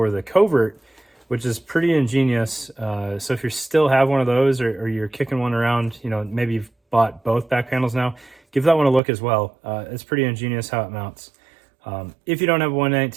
the Covert, which is pretty ingenious. So if you still have one of those, or you're kicking one around, you know, maybe you've bought both back panels now, give that one a look as well. It's pretty ingenious how it mounts. If you don't have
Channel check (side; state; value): left; drops out; at 9.0 s